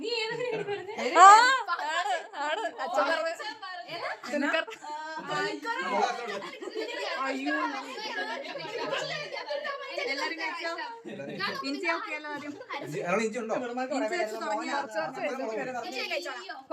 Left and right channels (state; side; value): identical; both; correlation 1.00